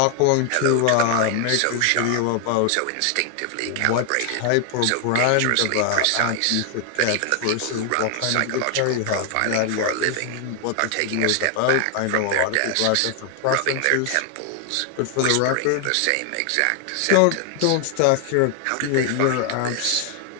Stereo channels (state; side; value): different; both; correlation 0.00